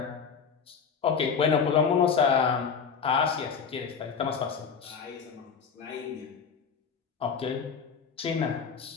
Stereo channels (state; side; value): quieter; right; 6.2 dB